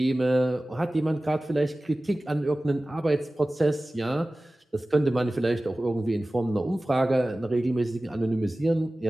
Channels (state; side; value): normal; both; correlation 0.97